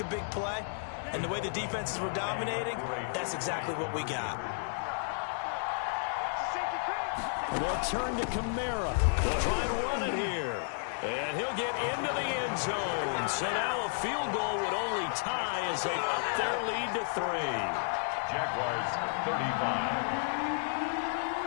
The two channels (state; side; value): silent; right; digital silence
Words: a big play, and the way the defenses were dominating, that's exactly what we got. They'll turn to Kamara. They'll try and run it here. And he'll get into the end zone. So now a field goal would only tie as they up their lead to 3. Jaguars 35.